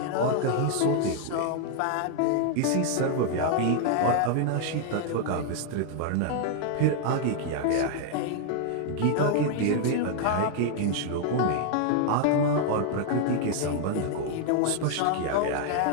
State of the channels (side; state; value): both; different; correlation 0.00